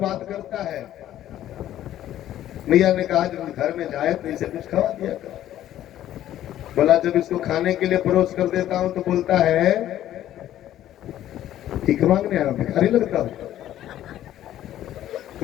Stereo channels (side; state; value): right; quieter; 12.5 dB